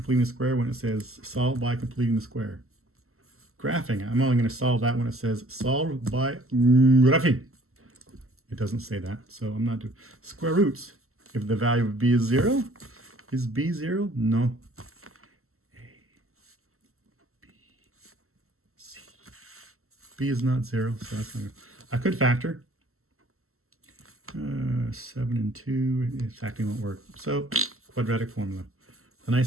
the square when it says solve by completing the square. Graphing, I'm only going to solve that when it says solve by graphing. It doesn't say that, so I'm not doing square roots. If the value of b is 0, is b 0? No. A, B, C. B is not 0, so that's not good. I could factor. 7 and 2, factoring won't work. So, quadratic formula. The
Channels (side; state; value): left; late; 0.63 ms